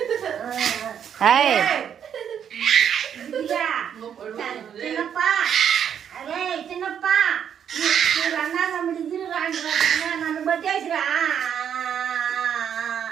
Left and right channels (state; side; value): quieter; left; 8.6 dB